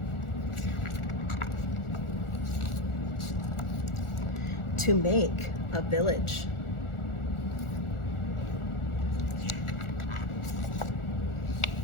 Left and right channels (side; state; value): right; late; 1.4 ms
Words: To make a village.